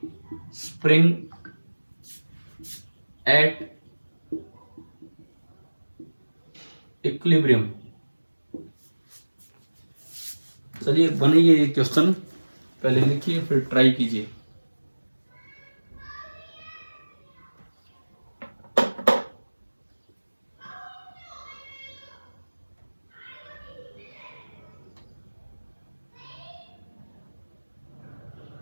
spring at equilibrium. चलिए बनाइए ये क्वेश्चन, पहले लिखिए फिर ट्राई कीजिए।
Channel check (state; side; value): inverted; both; correlation -1.00